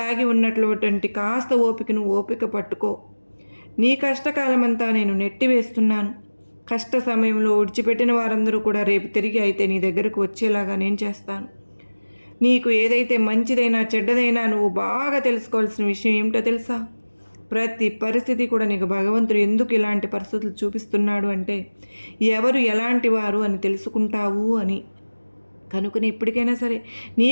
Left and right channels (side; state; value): both; inverted; correlation -1.00